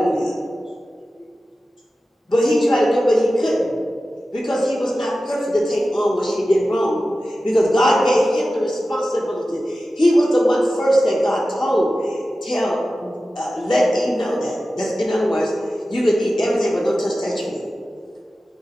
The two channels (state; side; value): normal; both; correlation 0.94